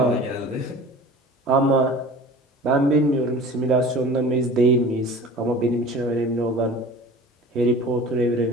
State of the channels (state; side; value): normal; both; correlation 0.41